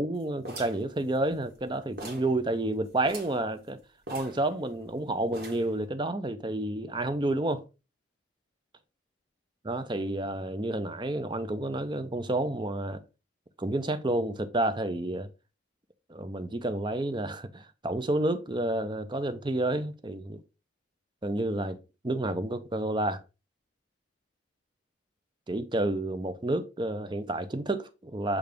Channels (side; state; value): both; normal; correlation 0.56